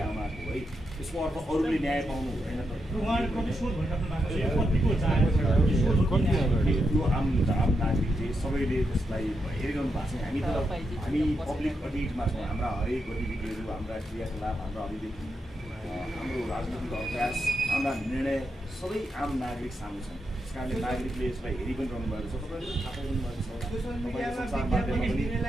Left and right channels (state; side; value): normal; both; correlation 0.84